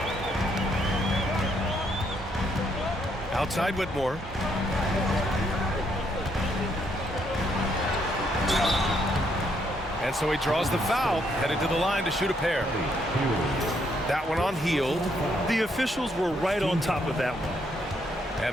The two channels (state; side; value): normal; both; correlation 0.73